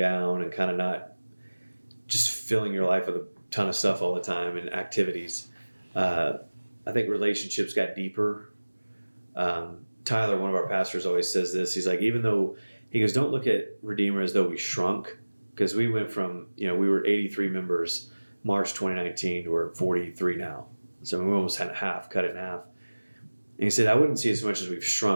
and kind of not just filling your life with a ton of stuff all the time and activities. I think relationships got deeper. Tyler, one of our pastors, always says this. He's like, he goes, don't look at Redeemer as though we shrunk, because we went from, we were 83 members March 2019 to we're 43 now. So we almost had cut it in half. And he said, I wouldn't see it as much as we've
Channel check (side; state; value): both; inverted; correlation -1.00